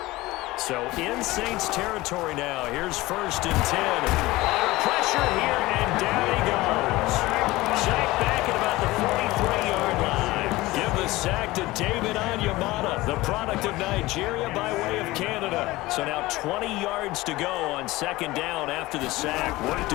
So in Saints territory now. Here's 1st and 10. Under pressure here, and down he goes. Sacked back at about the 43-yard line. Give the sack to David Onyemata, the product of Nigeria by way of Canada. So now 20 yards to go on 2nd down after the sack. Work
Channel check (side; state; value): right; quieter; 19.3 dB